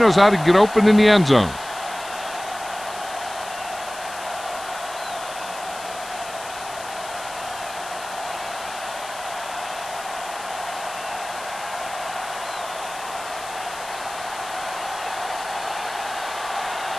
how to get open in the end zone.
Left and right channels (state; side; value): noise; left; hiss, 14 dB below the sound